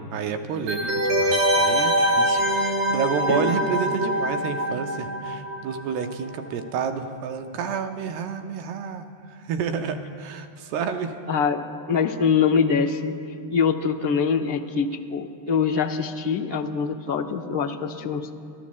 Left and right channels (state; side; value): late; left; 13 ms